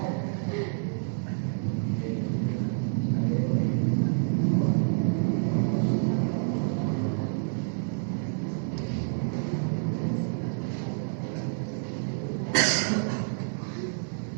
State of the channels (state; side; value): silent; left; 59 dB below the other